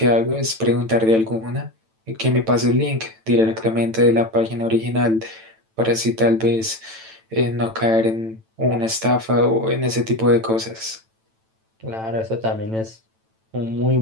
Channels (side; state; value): left; late; 9.0 ms